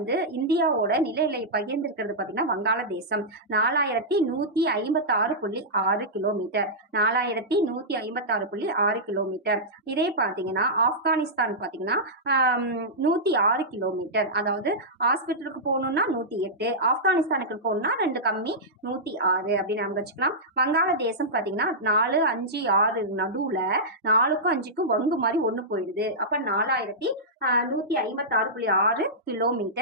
இந்தியாவோட நில எல்லை பகிர்ந்திருக்கிறது பாத்தீங்கன்னா வங்காளதேசம் 4,156.6 கிலோமீட்டர். 4,156.6 கிலோமீட்டர். இதே பாத்தீங்கன்னா ஆப்கானிஸ்தான் பாத்தீங்கன்னா 106 கிலோமீட்டர். அதாவது ஹாஸ்பிட்டலுக்கு போகணும்னா 108, ஆப்கானிஸ்தானுக்கு போகணும்னா 2 கம்மி 106 அப்படின்னு நம்ம வச்சுக்கலாம். வங்காளதேசம் பாத்தீங்கன்னா 4, 5, 6 நடுவுல 4க்கும் 5க்கும் வங்கு மாதிரி ஒண்ணு போயிடுது. அப்ப 4,156.6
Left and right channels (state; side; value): normal; both; correlation -0.12